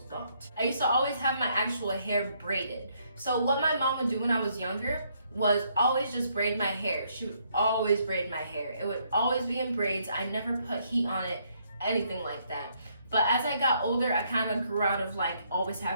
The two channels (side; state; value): both; inverted; correlation -0.71